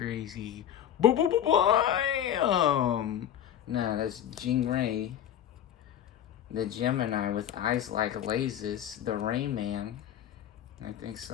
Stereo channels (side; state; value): right; quieter; 10.4 dB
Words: Bam! Nah, that's Jingray. The Gemini with eyes like lasers. The Rayman. I think